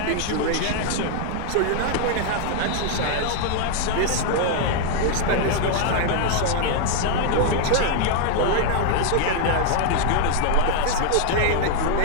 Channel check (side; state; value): both; different; correlation 0.00